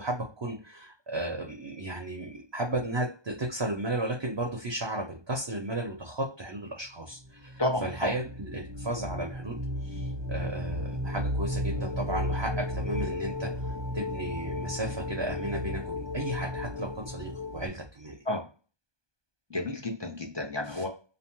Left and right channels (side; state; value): left; late; 1.2 ms